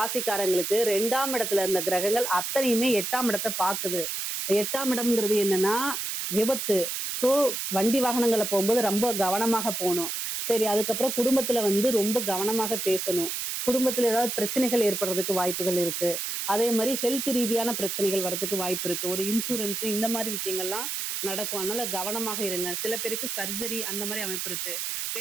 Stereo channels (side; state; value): right; noise; hiss, 3 dB below the sound